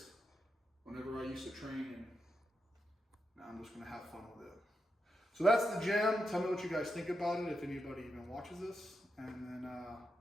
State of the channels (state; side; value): normal; both; correlation 0.85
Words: whenever I used to train, and now I'm just gonna have fun with it. So that's the gym. Tell me what you guys think about it, if anybody even watches this. And then